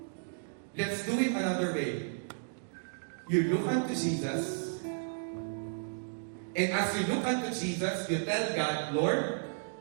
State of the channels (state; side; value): silent; left; digital silence